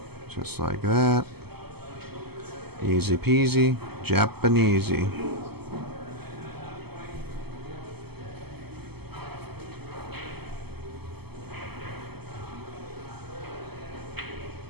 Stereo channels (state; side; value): late; left; 0.96 ms